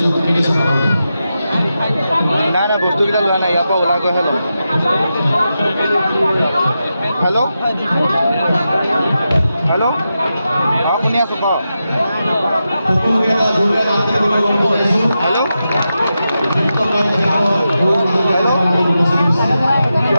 বিনীত সভাপতি। নাই নাই বস্তুকেইটা লোৱা নাই, ইয়াৰ পৰা ওলাই গৈহে ল'ম। হেল্ল' হেল্ল' অঁ শুনি আছোঁ কওক। সকলোকে এটা জোৰদাৰ মাতৃ অনুৰোধ কৰিছোঁ। হেল্ল'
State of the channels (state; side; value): inverted; both; correlation -0.89